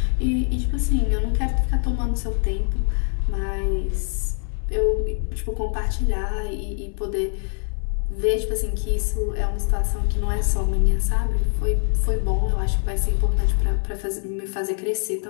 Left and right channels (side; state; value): right; silent; 62 dB below the other